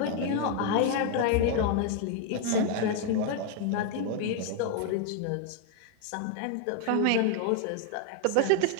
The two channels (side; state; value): both; different; correlation 0.00